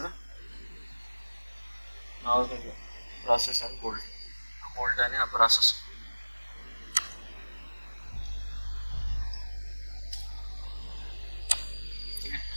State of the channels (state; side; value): inverted; both; correlation -1.00